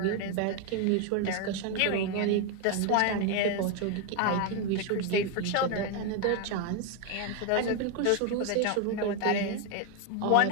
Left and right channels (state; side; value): different; both; correlation 0.01